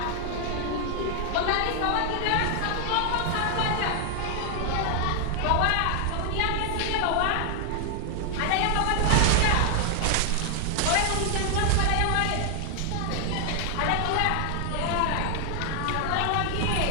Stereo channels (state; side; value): different; both; correlation 0.00